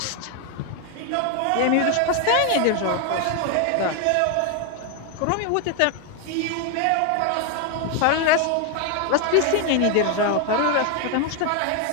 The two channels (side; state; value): both; different; correlation 0.01